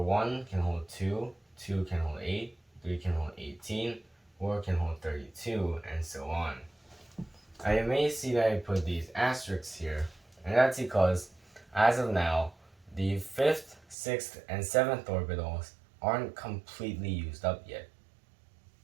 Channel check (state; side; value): drops out; left; at 14.0 s